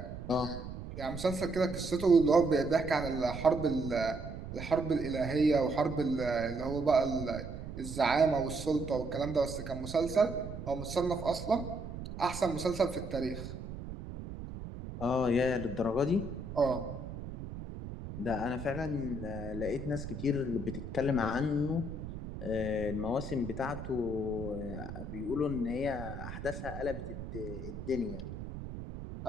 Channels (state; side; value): noise; right; rumble, 9 dB below the sound